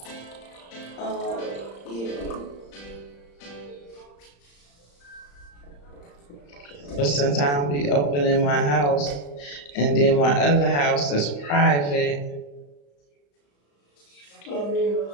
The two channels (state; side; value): late; right; 35 ms